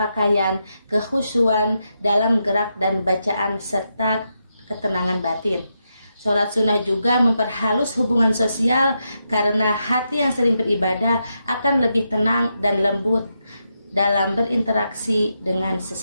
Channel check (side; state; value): both; inverted; correlation -0.84